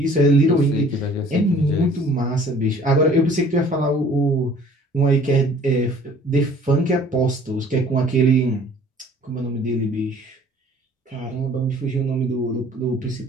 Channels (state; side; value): normal; both; correlation 0.52